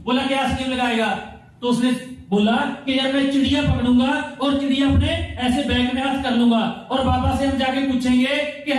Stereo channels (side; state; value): both; identical; correlation 1.00